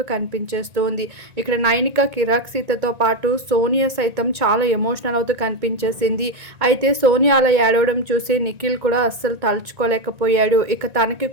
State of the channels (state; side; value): late; left; 1.9 ms